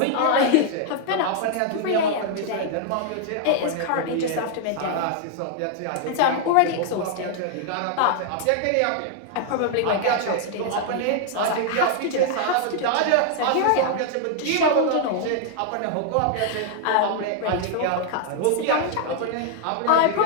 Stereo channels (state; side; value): different; both; correlation 0.00